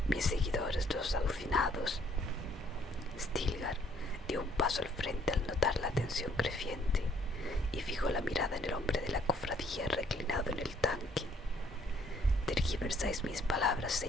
mis seguidores los alucinados? Stilgar dio un paso al frente al notar la tensión creciente y fijó la mirada en el hombre de la cofradía reclinado en el tanque. tomáis mis palabras,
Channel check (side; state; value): both; normal; correlation 0.63